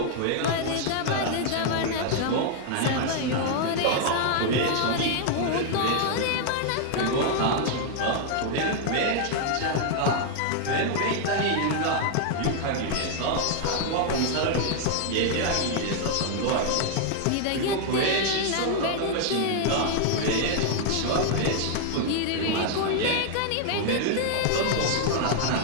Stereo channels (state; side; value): different; both; correlation 0.00